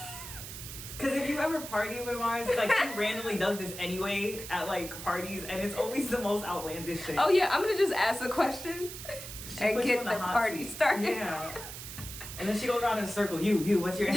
Because if you ever party with Mars, she randomly does this anyway at parties, and it's always the most outlandish shit. Oh yeah, I'm gonna just ask a question and get the party started. Yeah. And then she goes around in a circle. You, what's your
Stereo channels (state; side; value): noise; right; hiss, 10 dB below the sound